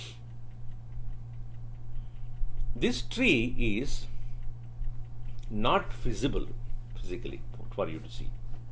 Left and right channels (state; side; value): identical; both; correlation 1.00